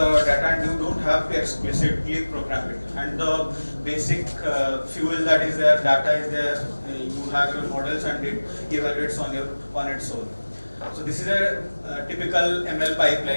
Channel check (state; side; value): inverted; both; correlation -1.00